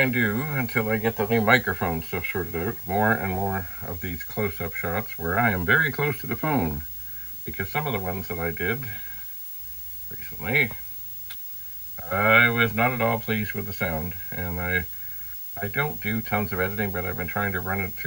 and do, until I get the new microphone stuff sorted out, more and more of these close-up shots where I am very close to the phone. Because some of the ones that I did recently, I was not at all pleased with the sound. And I don't do tons of editing, but I've been trying to run it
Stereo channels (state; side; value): noise; left; hiss, 18 dB below the sound